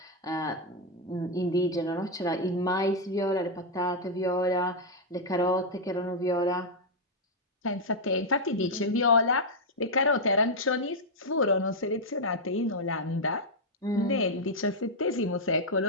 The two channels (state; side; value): normal; both; correlation -0.02